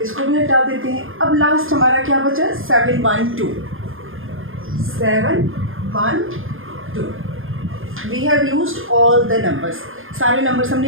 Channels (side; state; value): left; late; 0.59 ms